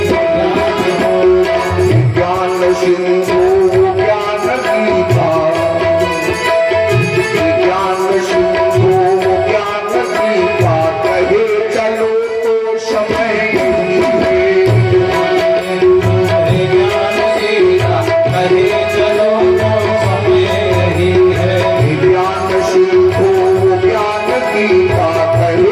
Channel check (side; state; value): both; identical; correlation 1.00